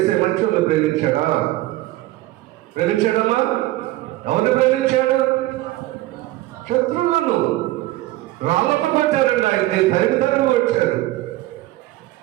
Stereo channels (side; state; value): left; quieter; 17.3 dB